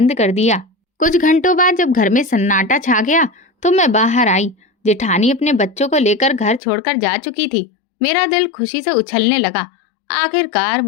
कर दिया। कुछ घंटों बाद जब घर में सन्नाटा छा गया तो मैं बाहर आई जेठानी अपने बच्चों को लेकर घर छोड़कर जा चुकी थी। मेरा दिल खुशी से उछलने लगा। आखिरकार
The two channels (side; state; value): right; drops out; at 6.6 s